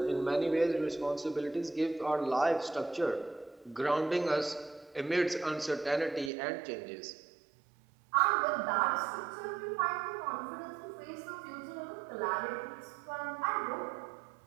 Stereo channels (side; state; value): left; drops out; at 6.3 s